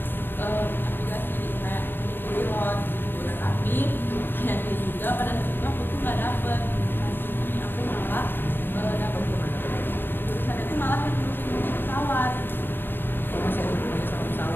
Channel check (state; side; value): late; right; 0.097 ms